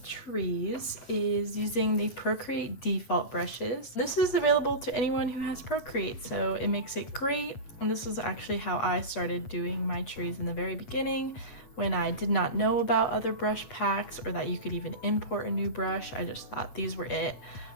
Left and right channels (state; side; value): late; right; 8.6 ms